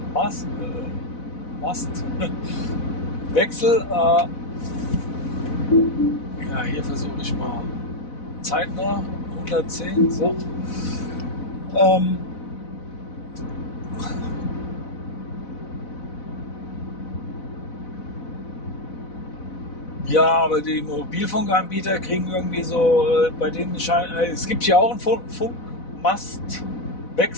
Hier versuche ich mal zeitnah 110. So. Ja, aber die Mobilfunkanbieter kriegen irgendwie so, bei denen es gibt ja auch einen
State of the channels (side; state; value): right; late; 4.1 ms